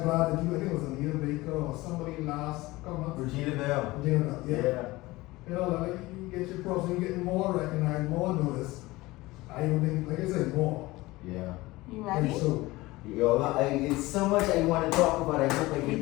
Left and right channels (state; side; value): quieter; right; 20.1 dB